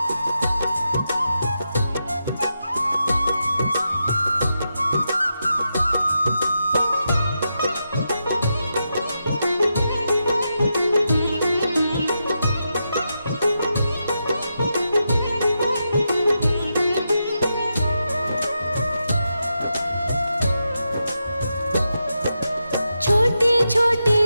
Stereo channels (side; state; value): both; inverted; correlation -0.86